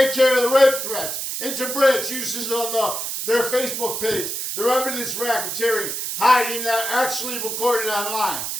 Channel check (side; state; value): right; noise; hiss, 4 dB below the sound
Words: care of the rape threats, interbranch uses of their Facebook page, their evidence racketeering, hiding that actually recorded online,